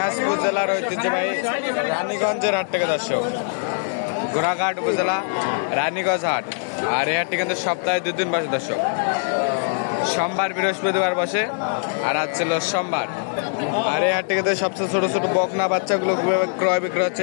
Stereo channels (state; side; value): silent; right; 64 dB below the other